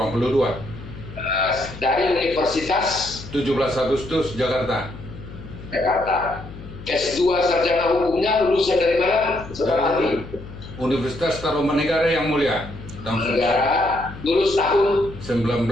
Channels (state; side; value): noise; left; hum, 14 dB below the sound